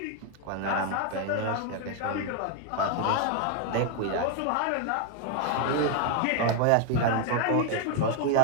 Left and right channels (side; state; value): both; different; correlation 0.01